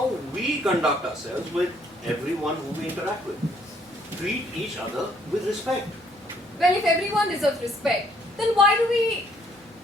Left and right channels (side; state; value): both; normal; correlation 0.65